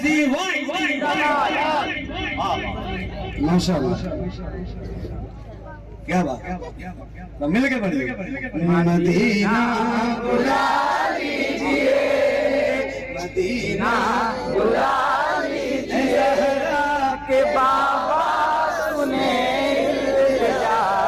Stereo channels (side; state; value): both; identical; correlation 1.00